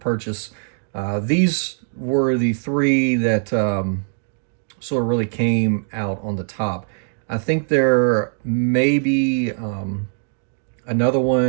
these were the 3 that sort of really came out on the top. I think there may be another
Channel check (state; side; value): silent; left; digital silence